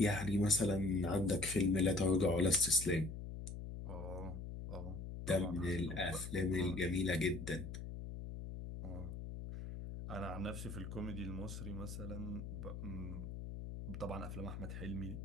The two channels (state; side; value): noise; left; hum, 7 dB below the sound